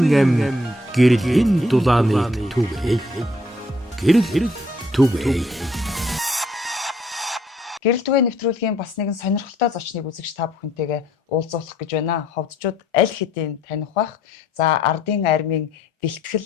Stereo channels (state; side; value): normal; both; correlation 0.64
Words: ам гэрлийн дулааныг түгэй. Гэрэл түгэй. Гэрэл түгээх нэвтрүүлгийн бас нэгэн сонирхолтой зочныг үзэгч та бүхэнтэйгээ уулзуулах гэж байна. Ховдчууд аль хэдийн таних бах. За ардын армийн